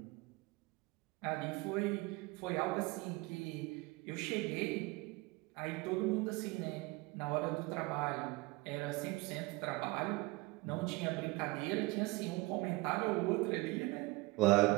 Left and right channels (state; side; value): quieter; left; 22.9 dB